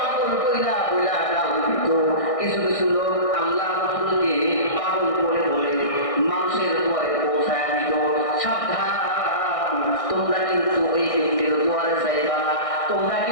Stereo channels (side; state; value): right; late; 1.6 ms